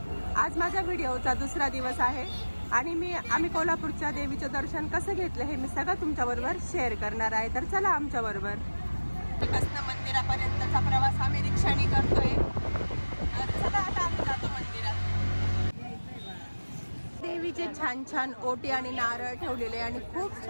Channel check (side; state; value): both; inverted; correlation -1.00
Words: आज माझ्या व्हिडिओचा दुसरा दिवस आहे आणि आम्ही कोल्हापूरच्या देवीचं दर्शन कसं घेतलं हे मी सगळं तुमच्याबरोबर शेअर करणार आहे। तर चला आमच्याबरोबर। मंदिरापर्यंतचा प्रवास आम्ही रिक्षाने करतोय। तर चला आता आम्ही जातो मंदिरात। देवीचे छान छान ओटी आणि नारळ ठेवलेले आणि खूप